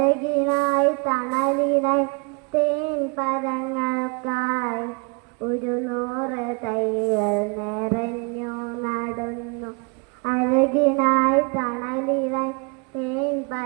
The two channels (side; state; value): left; quieter; 32.7 dB